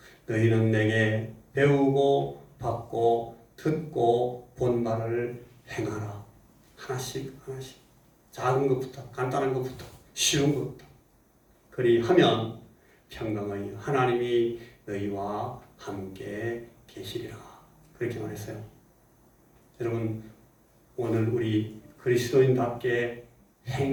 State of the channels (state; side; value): identical; both; correlation 1.00